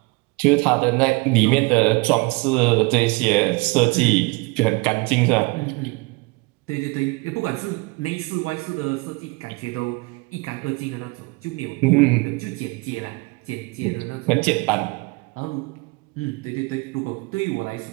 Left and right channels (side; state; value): left; quieter; 26.7 dB